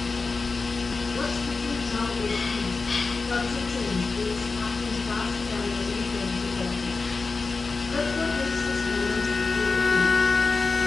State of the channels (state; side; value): quieter; right; 4.2 dB